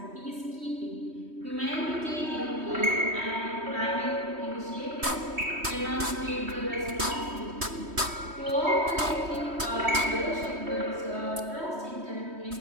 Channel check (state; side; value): late; left; 3.2 ms